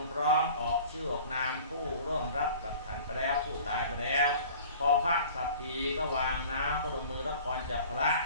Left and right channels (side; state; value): both; inverted; correlation -0.45